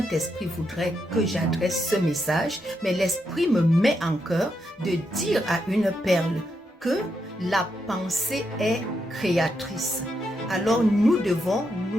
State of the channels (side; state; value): both; normal; correlation 0.82